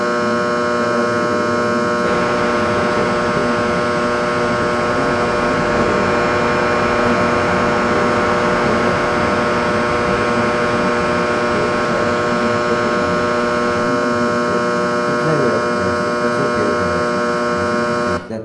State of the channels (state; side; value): identical; both; correlation 1.00